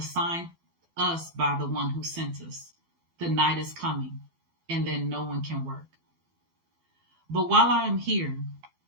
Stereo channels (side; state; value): left; late; 12 ms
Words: us by the one who sent us. The night is coming, and then no one can work. But while I am here